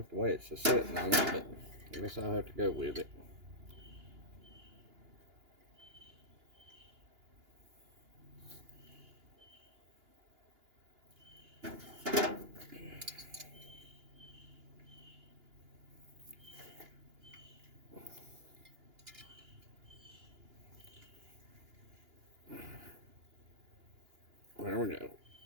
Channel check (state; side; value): late; left; 2.9 ms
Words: the way it's sitting on it, but I guess I'll have to go with it. There we go.